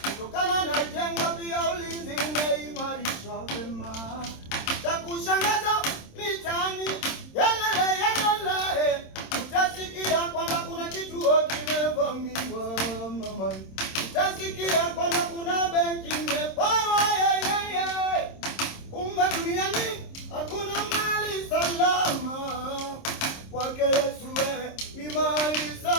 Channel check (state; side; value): late; right; 26 ms